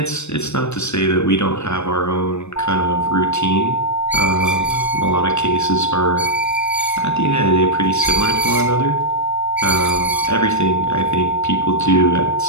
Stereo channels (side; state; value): right; late; 0.81 ms